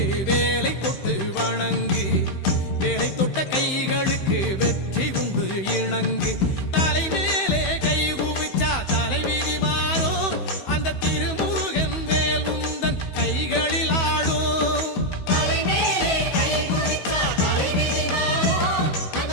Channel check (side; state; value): right; late; 15 ms